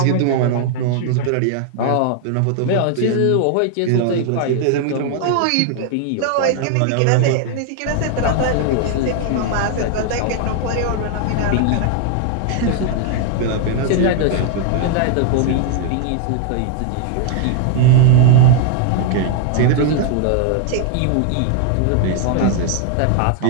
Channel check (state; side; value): different; both; correlation 0.00